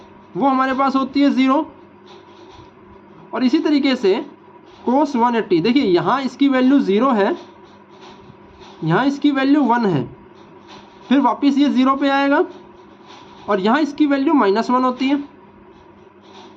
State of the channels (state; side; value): identical; both; correlation 1.00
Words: वो हमारे पास होती है 0। और इसी तरीके से cos 180, देखिए यहाँ इसकी वैल्यू 0 है, यहाँ इसकी वैल्यू 1 है, फिर वापस ये 0 पे आएगा और यहाँ इसकी वैल्यू -1 होती है।